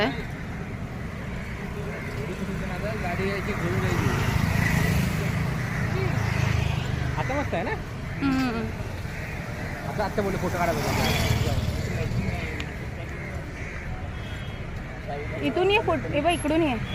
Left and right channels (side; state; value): both; identical; correlation 1.00